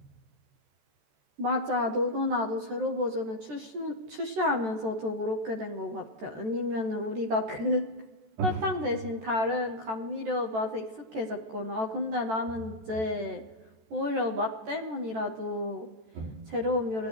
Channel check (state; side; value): late; left; 14 ms